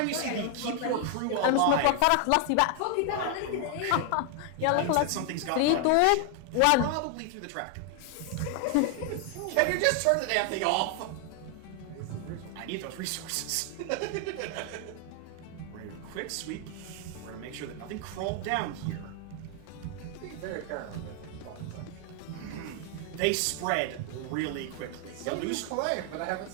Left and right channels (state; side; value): different; both; correlation 0.00